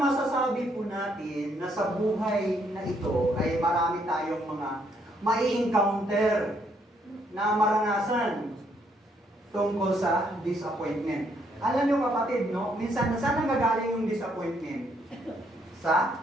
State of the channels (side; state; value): both; normal; correlation 0.71